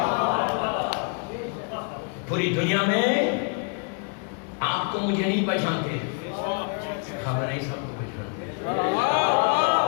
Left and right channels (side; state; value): right; quieter; 39.2 dB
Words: پوری دنیا میں آپ کو مجھے نہیں پہچانتے, خامنہئی صاحب کو پہچانتے.